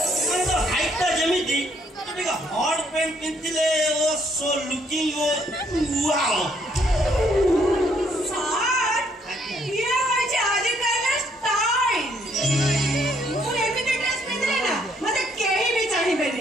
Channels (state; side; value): normal; both; correlation 0.69